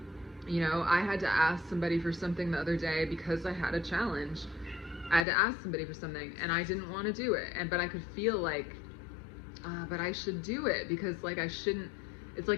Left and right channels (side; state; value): right; drops out; at 5.2 s